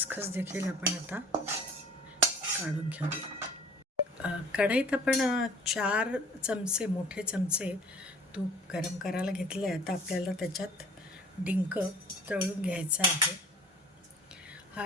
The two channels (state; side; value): normal; both; correlation 0.48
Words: देखील आपण आता काढून घेऊया. कढईत आपण 4 चमचे मोठे चमचे तूप गरम करायला घेतलं आहे. आता आपल्याला त्याच्यात डिंक तळून घ्यायचा आहे.